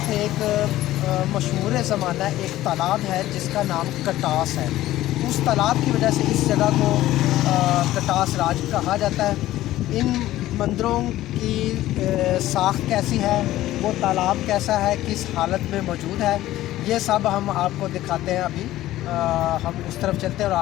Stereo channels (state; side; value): quieter; right; 15.0 dB